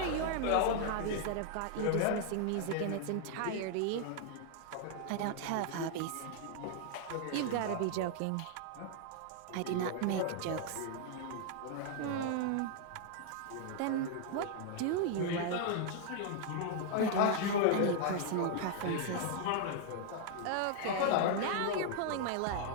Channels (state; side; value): different; both; correlation 0.00